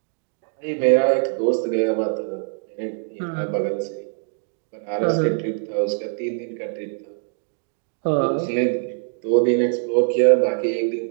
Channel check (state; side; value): silent; left; 63 dB below the other